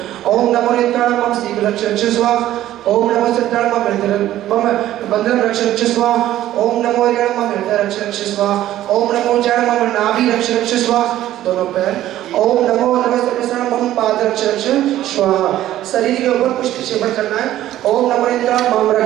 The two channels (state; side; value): quieter; left; 13.5 dB